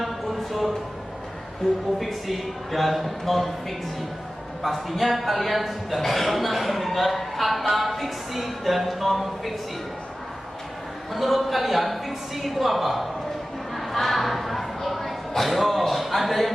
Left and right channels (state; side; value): normal; both; correlation 0.95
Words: unsur buku fiksi dan non fiksi. Pastinya kalian sudah pernah mendengar kata fiksi dan non fiksi. Menurut kalian fiksi itu apa? Ayo, ada